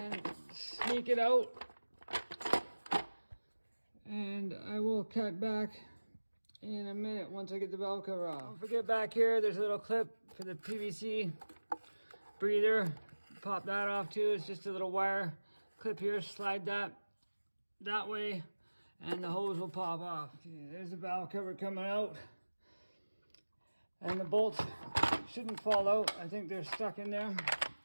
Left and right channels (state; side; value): inverted; both; correlation -1.00